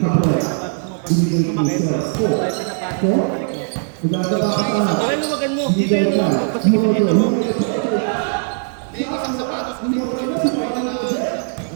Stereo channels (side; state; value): left; silent; 66 dB below the other